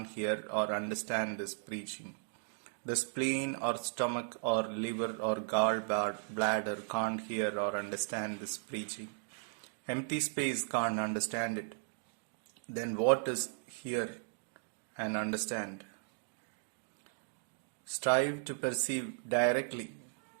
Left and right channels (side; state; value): left; silent; digital silence